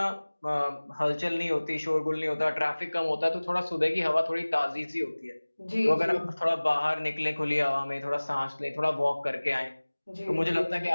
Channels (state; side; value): inverted; both; correlation -1.00